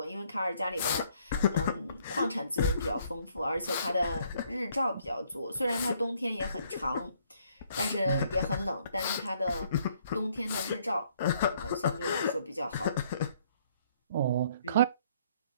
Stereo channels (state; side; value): inverted; both; correlation -0.65